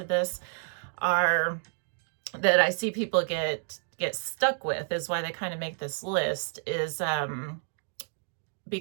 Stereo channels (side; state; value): left; silent; 58 dB below the other